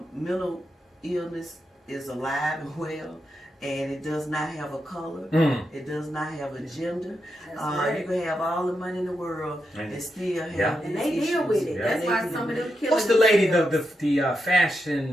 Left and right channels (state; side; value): normal; both; correlation 0.85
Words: mental illness is alive and well, and it does not have a color. It does not have a gender. That's right. You can have all the money in the world and still have And these they deal issues. with it. Yeah. That's They why deal some of with them it. kill What's the lady, themselves. the